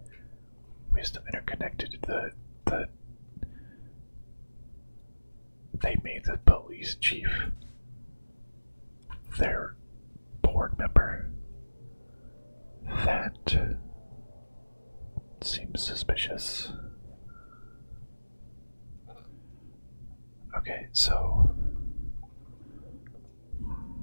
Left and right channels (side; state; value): both; inverted; correlation -1.00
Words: Wisdom Interconnected, they made the police chief their board member. That seems suspicious. Okay, so